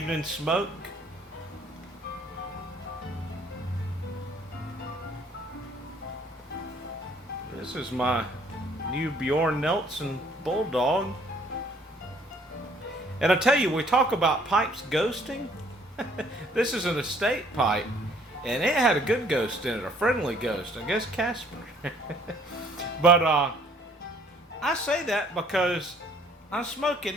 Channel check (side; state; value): both; normal; correlation 0.60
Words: smoke. This is my new Bjorn Nelson Bulldog. And I tell you, we talk about pipes ghosting. This is an estate pipe. And it had a good ghost in it, a friendly ghost. I guess Casper. But I say that because I'm smoking